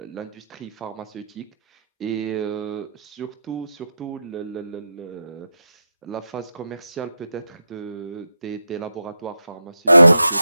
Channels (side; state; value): both; inverted; correlation -0.85